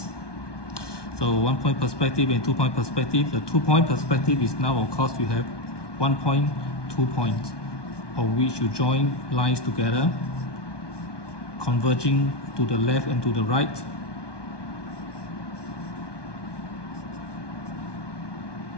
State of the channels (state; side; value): late; right; 1.2 ms